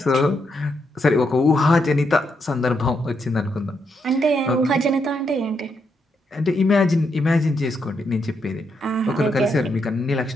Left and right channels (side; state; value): both; normal; correlation 0.79